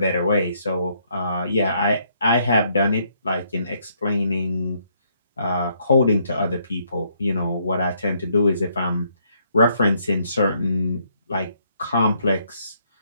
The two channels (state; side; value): inverted; both; correlation -0.71